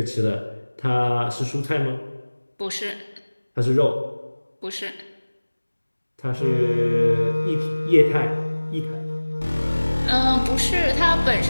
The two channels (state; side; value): inverted; both; correlation -1.00